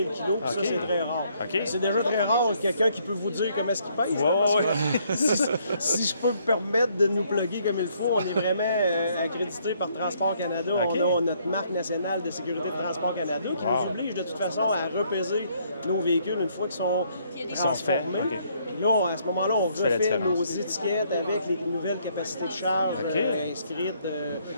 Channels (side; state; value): both; inverted; correlation -0.68